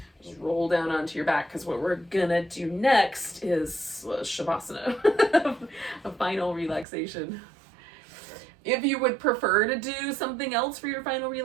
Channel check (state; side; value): drops out; left; at 6.9 s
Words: just roll down onto your back, because what we're gonna do next is Shavasana, a final relaxation. If you would prefer to do something else for your final